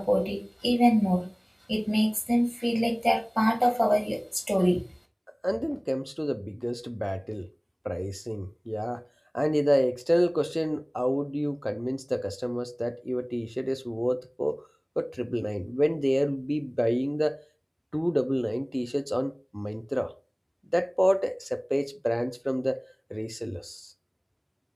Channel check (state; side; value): identical; both; correlation 1.00